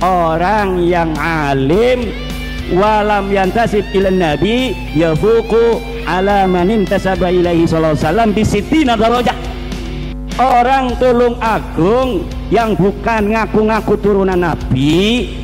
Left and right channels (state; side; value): identical; both; correlation 1.00